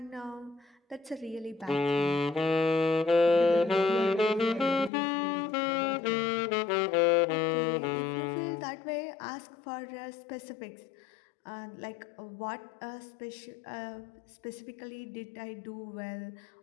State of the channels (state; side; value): drops out; right; at 4.9 s